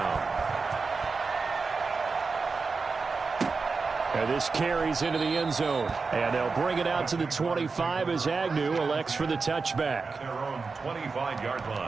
And this carries into the end zone. And they'll bring it out to the 25 as Agnew elects for the touchback. Their own 25-yard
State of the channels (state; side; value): quieter; left; 4.5 dB